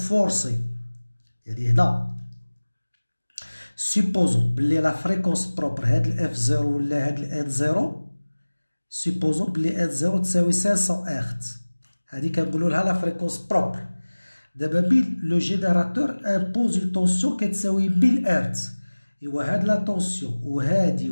يعني هنا supposons بلي لا فريكونس بروبر هاد ال F0 ولا هاد ال N0 supposons بلي N0 تساوي 500 هرتز. هادي كنقولوا لها لا فريكونس بروبر. دابا بين لو جينيراتور امبوز اون طونسيون كتساوي 1000 هرتز. ايوا هاد لا طونسيون وهادي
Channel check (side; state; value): both; inverted; correlation -1.00